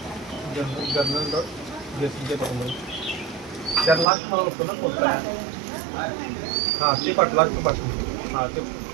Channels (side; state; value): left; drops out; at 4.0 s